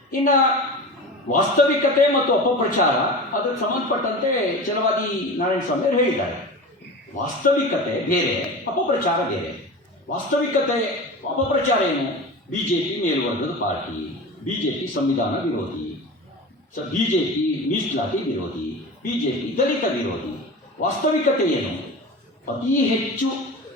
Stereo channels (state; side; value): normal; both; correlation 0.31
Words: ಇನ್ನು ವಾಸ್ತವಿಕತೆ ಮತ್ತು ಅಪಪ್ರಚಾರ, ಅದಕ್ಕೆ ಸಂಬಂಧಪಟ್ಟಂತೆ ಛಲವಾದಿ ನಾರಾಯಣ ಸ್ವಾಮಿ ಅವರು ಹೇಳಿದ್ದಾರೆ. ವಾಸ್ತವಿಕತೆ ಬೇರೆ, ಅಪಪ್ರಚಾರ ಬೇರೆ. ವಾಸ್ತವಿಕತೆ ಅಪಪ್ರಚಾರ ಏನು? BJP ಮೇಲ್ವರ್ಗದ ಪಾರ್ಟಿ, BJP ಸಂವಿಧಾನ ವಿರೋಧಿ, BJP ಮೀಸಲಾತಿ ವಿರೋಧಿ, BJP ದಲಿತ ವಿರೋಧಿ. ವಾಸ್ತವಿಕತೆ ಏನು? ಅತಿ ಹೆಚ್ಚು